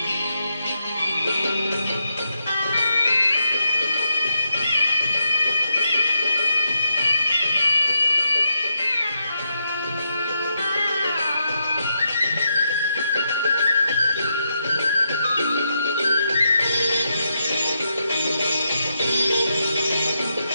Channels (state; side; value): inverted; both; correlation -0.82